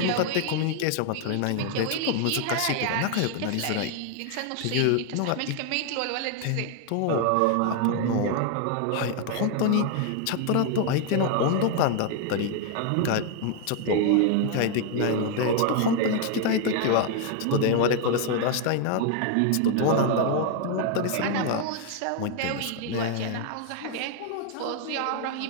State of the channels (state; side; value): different; both; correlation 0.00